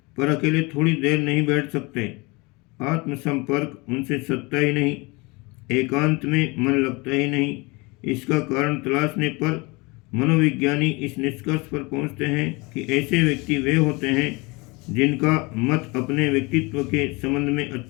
पर अकेले थोड़ी देर नहीं बैठ सकते। आत्मसंपर्क उनसे सत्ता ही नहीं, एकांत में मन लगता ही नहीं। इसका कारण तलाशने पर मनोविज्ञानी इस निष्कर्ष पर पहुंचते हैं कि ऐसे व्यक्ति वे होते हैं जिनका मत अपने व्यक्तित्व के संबंध में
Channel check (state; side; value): quieter; right; 26.1 dB